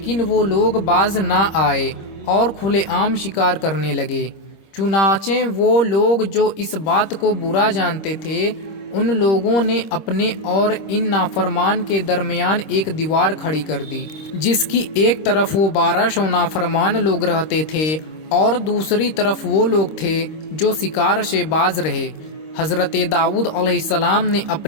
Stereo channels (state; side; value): late; right; 25 ms